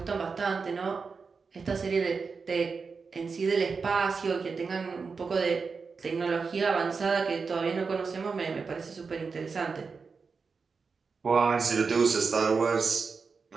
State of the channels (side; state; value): left; quieter; 5.0 dB